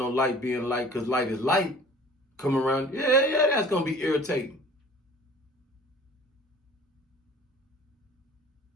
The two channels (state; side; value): normal; both; correlation 0.47